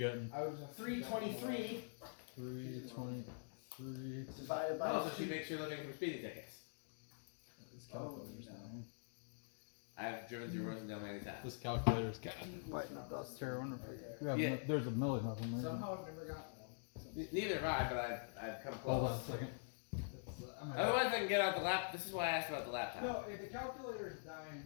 I was 323. 323 divided by. Oh, so she makes sure looking for speeding tickets. This calculator's down. I've driven through Rosendale many times. This calculator's got biting the dust here. There's a million of them. Somehow I've never gotten one. Neither have I, but I've come close. Hold on a second. Otherwise, I can get out the laptop. This is why I asked about the laptop. No, if the calculator is dying,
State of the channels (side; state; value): right; silent; digital silence